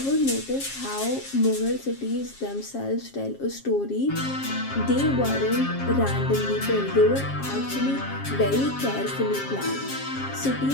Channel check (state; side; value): late; right; 7.4 ms